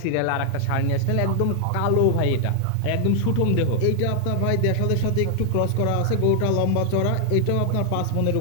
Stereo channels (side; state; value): both; different; correlation 0.00